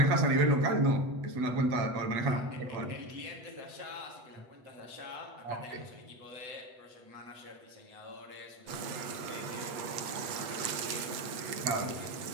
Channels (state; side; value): late; left; 8.1 ms